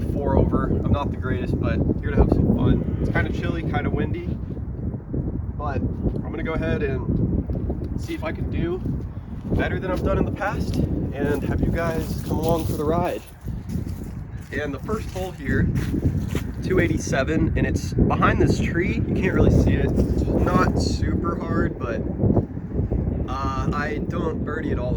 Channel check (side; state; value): both; identical; correlation 1.00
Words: 4 over. I'm not the greatest, but here to have some fun. It's kind of chilly, kind of windy, but I'm going to go ahead and see if I can do better than I've done in the past and have you guys come along for the ride. And the first hole here, 287, and it's behind this tree. You can't really see it. It's not super hard, but I don't birdie it all